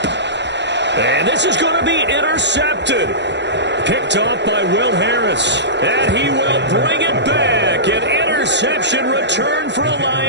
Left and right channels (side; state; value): left; late; 0.51 ms